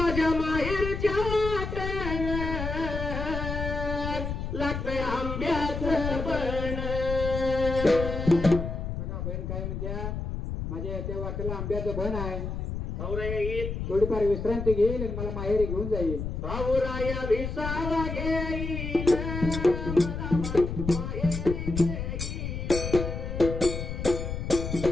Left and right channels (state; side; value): noise; left; rumble, 4 dB below the sound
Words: माहेरच्या लागतंय आंब्याचं बन. बघा बहीण काय म्हणत्या, माझ्या त्या वाटेला आंब्याचं बन आहे, भाऊराया येईल, थोडीफार विश्रांती घेईल आणि मला माहेरी घेऊन जाईल. भाऊराया विसावा घेईल, मला माहेरी घेईल.